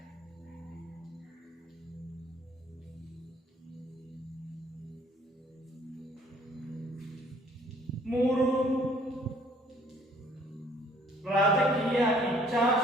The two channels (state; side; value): normal; both; correlation 0.59